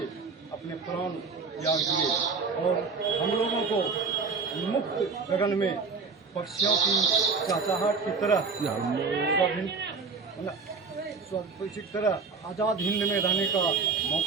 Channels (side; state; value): left; quieter; 4.8 dB